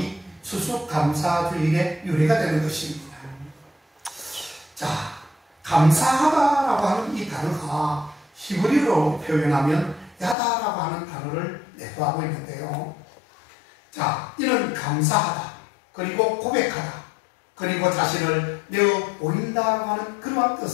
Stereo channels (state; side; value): drops out; right; at 10.4 s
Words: 추수감사주일의 유래가 되는 것입니다. 자, 감사하다라고 하는 이 단어가 히브리어로 표현하면 야다라고 하는 단어를 내포하고 있는데요. 자, 이는 감사하다, 그리고 고백하다, 그리고 자신을 내어 보인다고 하는 그러한